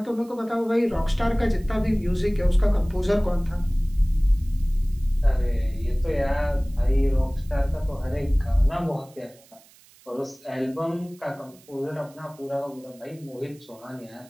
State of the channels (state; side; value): noise; right; hiss, 27 dB below the sound